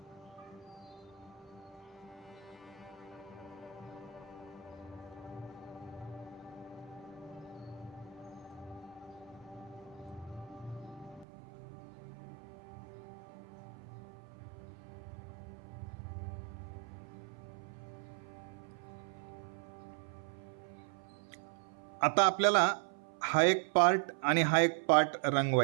आता आपल्याला हा एक पार्ट आणि हा एक पार्ट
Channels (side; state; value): left; drops out; at 11.2 s